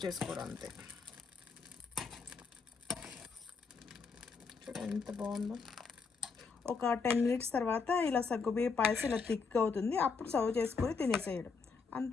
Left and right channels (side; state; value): right; quieter; 5.1 dB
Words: చేసుకోవడం అంతే. ఎంత బాగుందో. ఒక 10 మినిట్స్ తర్వాత ఇలా సగ్గుబియ్య పాయసం ఇలా థిక్ అవుతుంది. అప్పుడు సర్వ్ చేసుకొని తినేసేయడం